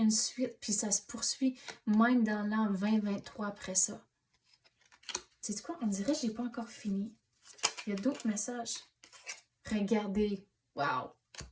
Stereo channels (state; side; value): identical; both; correlation 1.00